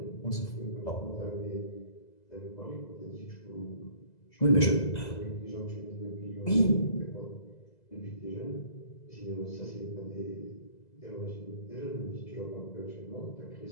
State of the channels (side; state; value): right; late; 2.0 ms